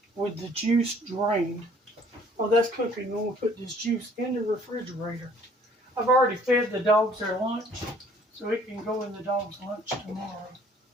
with the juice drained. Oh, that's cooking. I'm going to put this juice in the refrigerator. I've already fed the dogs their lunch, so it can go in the dog's lunch tomorrow.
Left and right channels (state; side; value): normal; both; correlation 0.57